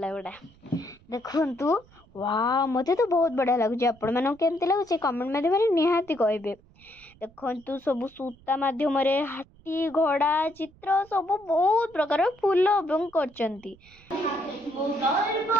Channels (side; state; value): right; noise; rumble, 27 dB below the sound